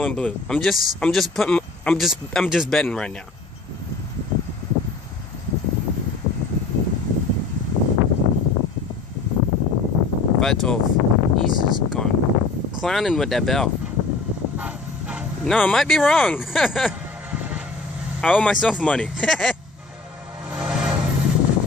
and blue. I'm just betting right now. Five 12. He's just gone clowning with that bell. No, I might be wrong. I owe myself money.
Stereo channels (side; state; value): right; quieter; 3.8 dB